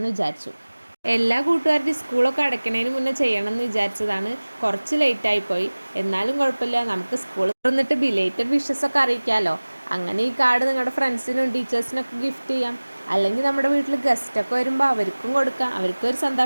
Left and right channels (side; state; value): both; inverted; correlation -1.00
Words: വിചാരിച്ചു. എല്ലാ കൂട്ടുകാരുടെയും സ്കൂളൊക്കെ അടയ്ക്കണതിന് മുന്നേ ചെയ്യണമെന്ന് വിചാരിച്ചതാണ്. കുറച്ച് ലേറ്റായിപ്പോയി. എന്നാലും കുഴപ്പമില്ല, നമുക്ക് സ്കൂൾ തുറന്നിട്ട് ബിലേറ്റഡ് വിഷസൊക്കെ അറിയിക്കാമല്ലോ. അങ്ങനെ ഈ കാർഡ് നിങ്ങളുടെ ഫ്രണ്ട്സിനും ടീച്ചേഴ്സിനൊക്കെ ഗിഫ്റ്റ് ചെയ്യാം. അല്ലെങ്കിൽ നമ്മുടെ വീട്ടിൽ ഗസ്റ്റൊക്കെ വരുമ്പോൾ അവർക്കും കൊടുക്കാം. അവർക്കും ഒരു